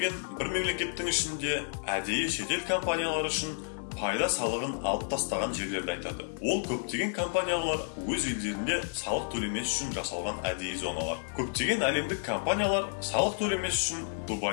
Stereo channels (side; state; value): right; silent; digital silence